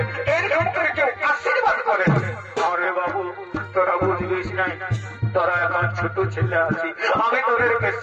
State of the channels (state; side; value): identical; both; correlation 1.00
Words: এরকম করে কেউ আশীর্বাদ করে আরে বাবু তোরা বুঝবিস নাই তোরা এখন ছোট ছেলে আছি আমি তোদেরকে